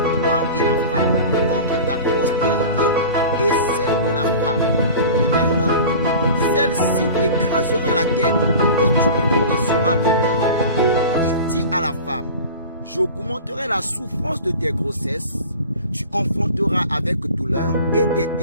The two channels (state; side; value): inverted; both; correlation -0.37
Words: toi et la femme, entre ta postérité et celle de la femme. Amen. Celle-ci t'écrasera la tête et tu lui blesseras le talon. Il dit à la femme, j'augmenterai la souffrance de tes grossesses, tu enfanteras avec douleur et tes